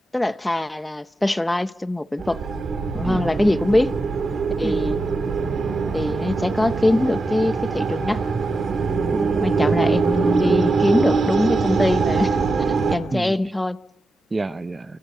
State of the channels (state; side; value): normal; both; correlation 0.89